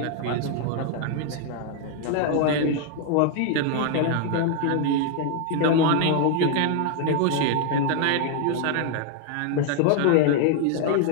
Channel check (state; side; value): different; both; correlation 0.00